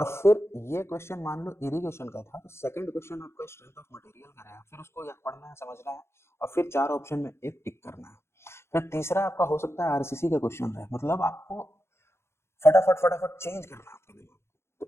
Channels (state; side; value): late; right; 0.13 ms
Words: फिर ये क्वेश्चन मान लो इरिगेशन का था, तो सेकंड क्वेश्चन आपका स्ट्रेंथ ऑफ मटेरियल का है, फिर उसको पढ़ना है, समझना है, और फिर 4 ऑप्शन में एक टिक करना है। फिर तीसरा आपका हो सकता है आरसीसी का क्वेश्चन है, मतलब आपको फटाफट फटाफट चेंज करना है आपके दिमाग।